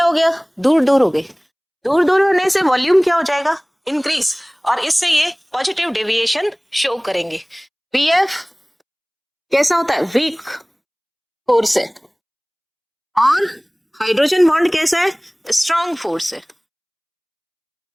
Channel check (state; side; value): identical; both; correlation 1.00